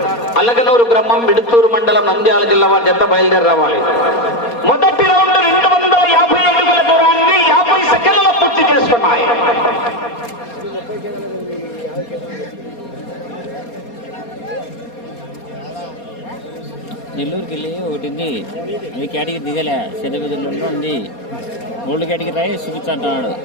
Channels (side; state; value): right; late; 4.2 ms